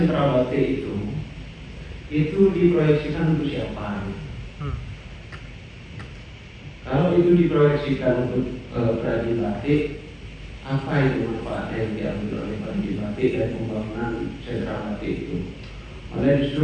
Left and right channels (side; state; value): both; identical; correlation 1.00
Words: batik itu diproyeksikan untuk siapa? Kalau itu diproyeksikan untuk perajin batik, apa itu manfaatnya yang diambil oleh perajin batik dan pembangunan sentra batik itu? Malah